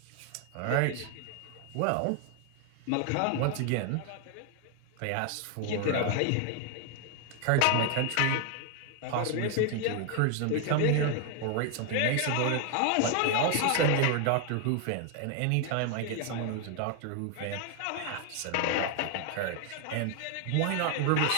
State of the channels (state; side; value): different; both; correlation 0.01